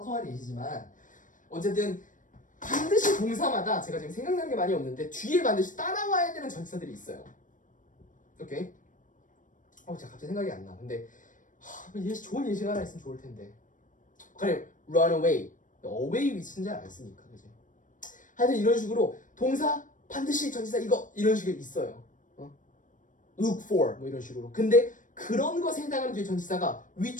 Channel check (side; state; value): right; late; 0.38 ms